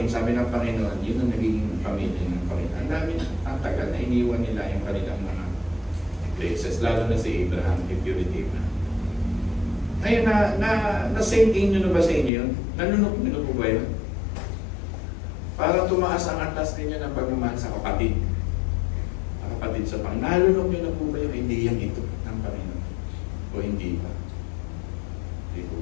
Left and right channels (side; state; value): right; drops out; at 12.3 s